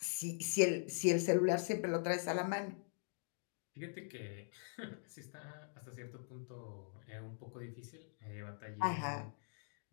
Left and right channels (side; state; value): right; silent; digital silence